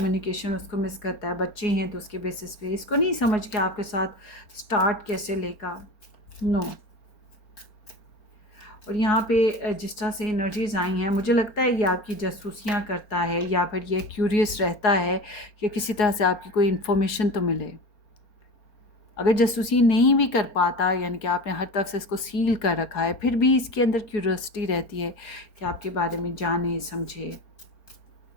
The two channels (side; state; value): right; late; 4.3 ms